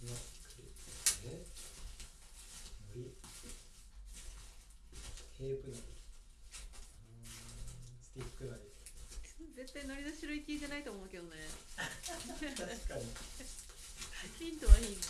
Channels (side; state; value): both; identical; correlation 1.00